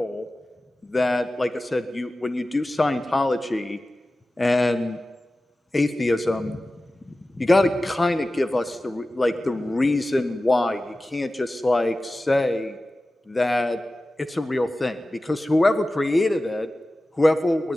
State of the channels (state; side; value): normal; both; correlation 0.96